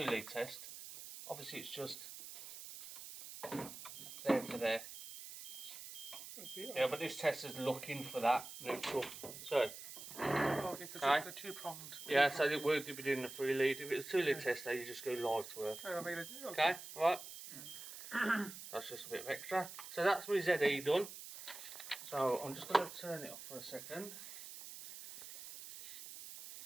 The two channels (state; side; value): noise; right; hiss, 11 dB below the sound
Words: lead test, obviously it's just there to there. Yeah, but this test is looking for that neutral. So, Okay, because Aye. it's a two-pronged. yeah, so it would be doing the 3 lead. If it's a 2 lead tester, you just go live to earth. I made it. Okay, right. That's just a bit of extra. So that's my ZE done. So I'm just going to turn it off for a second.